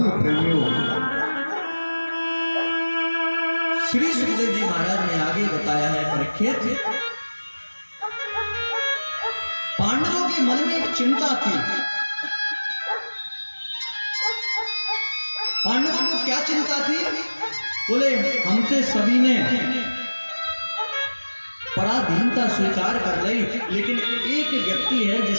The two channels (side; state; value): both; inverted; correlation -1.00